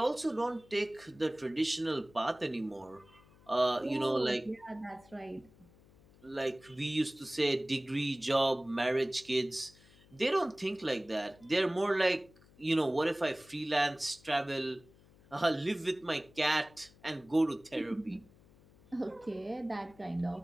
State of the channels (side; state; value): left; noise; hum, 26 dB below the sound